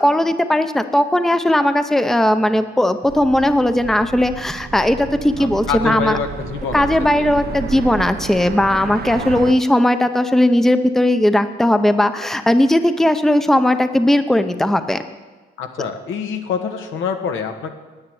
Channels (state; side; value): normal; both; correlation 0.90